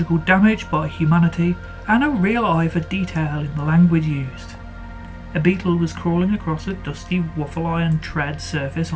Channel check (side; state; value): both; identical; correlation 1.00